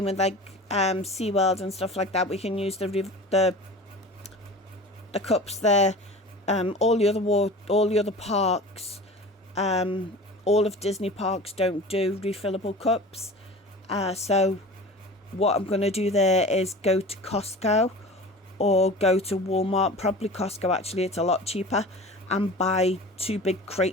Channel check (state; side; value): normal; both; correlation 0.37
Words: with like SeaWorld and stuff like that. We can use the cups there. All the other parks, all of Disney parks don't do refillable cups. So what I'm going to do there is go to Costco or go to Walmart, probably Costco actually, it's a lot cheaper, and buy 2 big